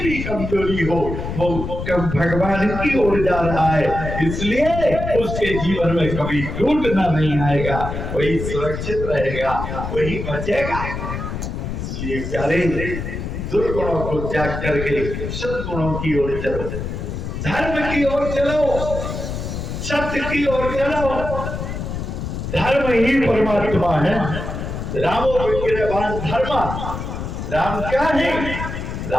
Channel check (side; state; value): left; noise; rumble, 5 dB below the sound